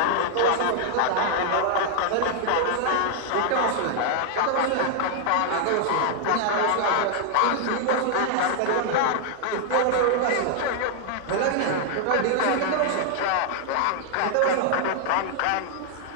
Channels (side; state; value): both; different; correlation 0.00